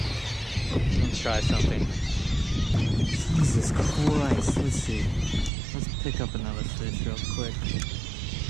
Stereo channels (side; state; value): left; drops out; at 5.5 s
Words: Let's try something. Jesus Christ. Let's see. Let's pick up another fish real quick.